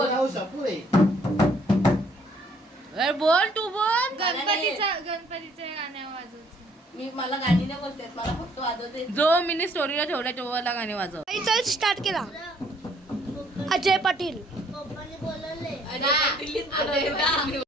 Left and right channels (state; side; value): normal; both; correlation 0.63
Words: बोल तू बोल. गणपतीचे गाणे वाजवते. मला गाणी नाही बोलते, मला फक्त वाजवते. जो मिनी स्टोरीला ठेवला तेव्हा गाणे वाजव. चल स्टार्ट केला. अजय पाटील.